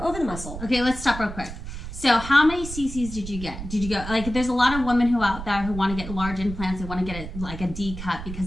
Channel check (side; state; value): right; noise; rumble, 9 dB below the sound